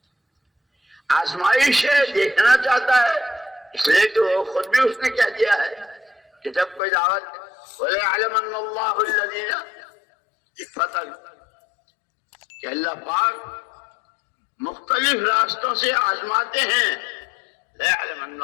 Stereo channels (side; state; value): right; drops out; at 6.8 s